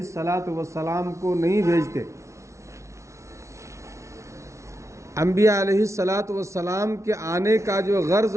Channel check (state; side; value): late; left; 0.14 ms